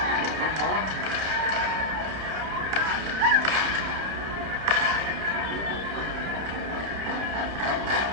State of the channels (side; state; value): left; late; 30 ms